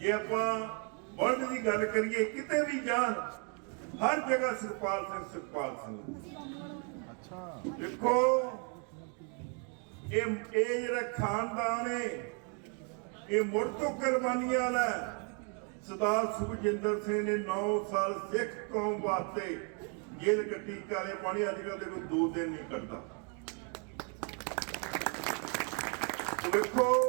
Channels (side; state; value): left; quieter; 38.7 dB